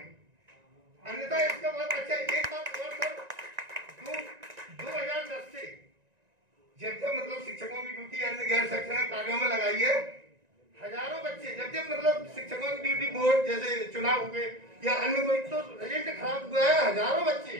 अन्यथा इसका बहुत अच्छा। एक बात और सर, 2010 से जब मतलब शिक्षकों की ड्यूटी अन्य गैर शैक्षणिक कार्यों में लगाई है, हजारों बच्चे जब मतलब शिक्षकों की ड्यूटी बोर्ड जैसे चुनाव हुए या अन्य कोई तो रिजल्ट खराब हुआ है, हजारों बच्चे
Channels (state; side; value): late; left; 1.9 ms